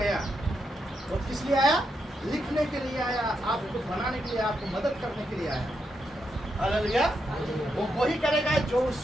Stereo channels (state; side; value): normal; both; correlation 0.82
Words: वो किस लिए आया? लिखने के लिए आया, आपको बनाने के लिए, आपको मदद करने के लिए आया। हालेलुया। वो वही करेगा जो